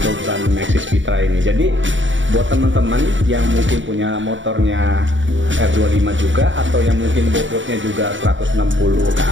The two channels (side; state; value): left; late; 0.55 ms